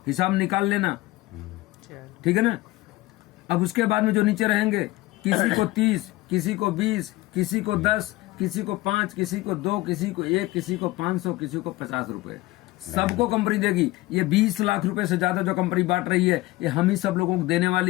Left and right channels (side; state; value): right; quieter; 19.0 dB